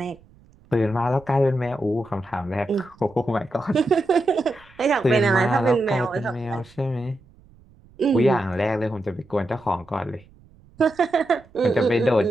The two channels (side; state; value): right; noise; rumble, 27 dB below the sound